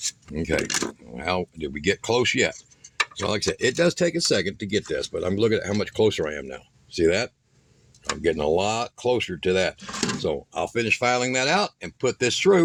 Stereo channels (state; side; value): identical; both; correlation 1.00